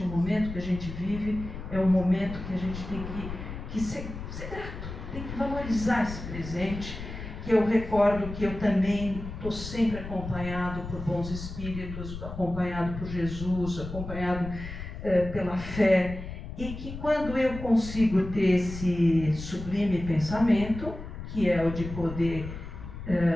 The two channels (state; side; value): noise; left; rumble, 9 dB below the sound